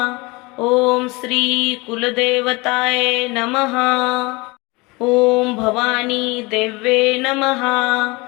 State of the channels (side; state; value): right; quieter; 25.0 dB